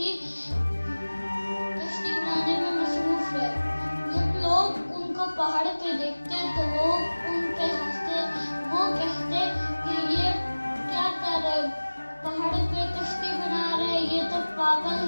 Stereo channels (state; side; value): inverted; both; correlation -1.00